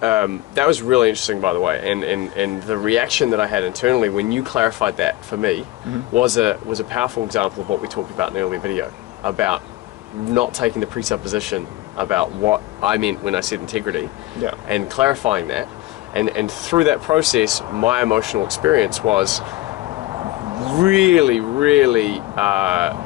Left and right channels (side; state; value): right; quieter; 17.2 dB